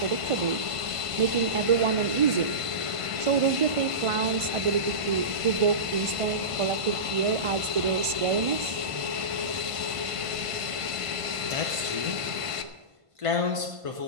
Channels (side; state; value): left; late; 1.5 ms